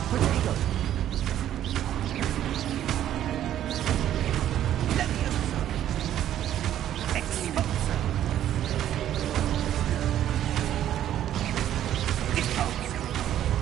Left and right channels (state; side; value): quieter; left; 11.5 dB